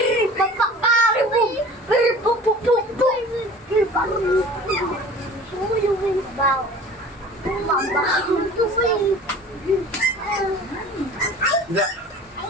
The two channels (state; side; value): normal; both; correlation 0.43